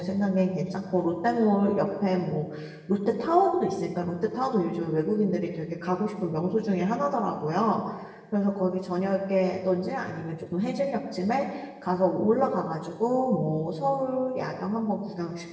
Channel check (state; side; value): identical; both; correlation 1.00